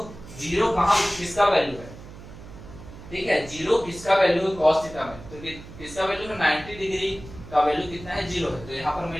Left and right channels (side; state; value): right; noise; hum, 15 dB below the sound